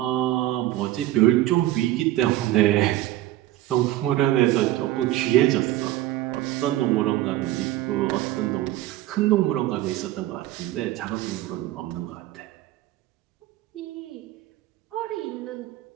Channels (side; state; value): left; quieter; 15.3 dB